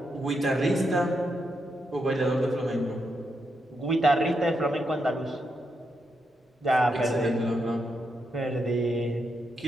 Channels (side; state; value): both; normal; correlation 0.82